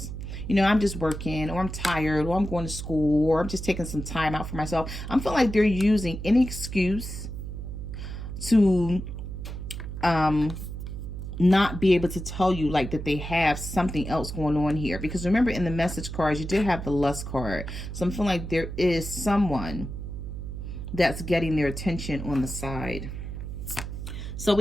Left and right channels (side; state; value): right; noise; hum, 7 dB below the sound